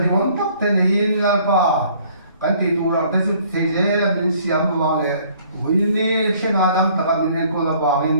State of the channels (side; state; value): both; inverted; correlation -0.59